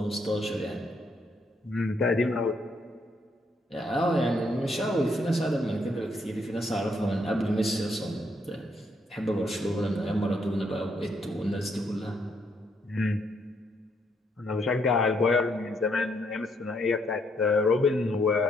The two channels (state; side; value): normal; both; correlation 0.73